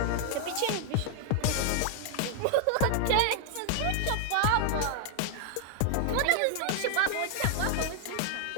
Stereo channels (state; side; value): different; both; correlation 0.00